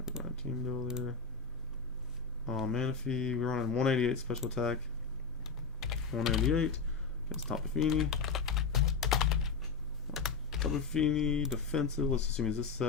Team Builder. Manaphy. We're running 188 special attack. 188 against Tapu Fini. Tapu Fini defensive. Let's assume is this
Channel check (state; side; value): quieter; right; 5.1 dB